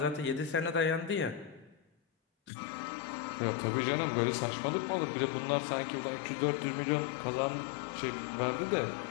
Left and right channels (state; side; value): drops out; right; at 2.5 s